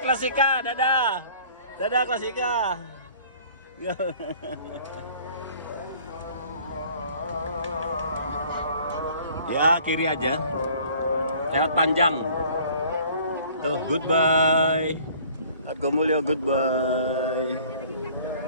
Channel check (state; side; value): inverted; both; correlation -0.53